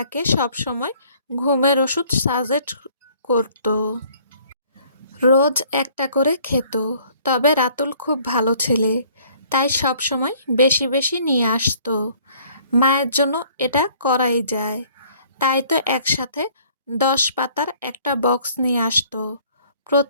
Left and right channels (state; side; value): inverted; both; correlation -0.58